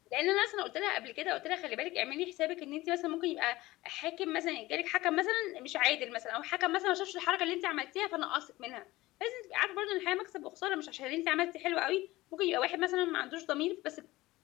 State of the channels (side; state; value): right; quieter; 18.6 dB